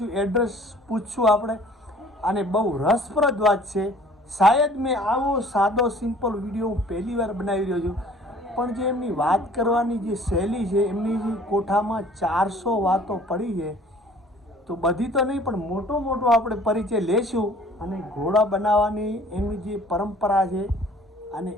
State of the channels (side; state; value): both; normal; correlation 0.52